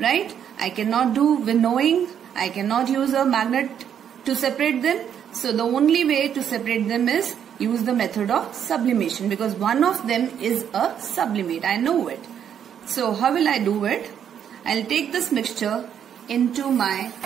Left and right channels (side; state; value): left; quieter; 8.8 dB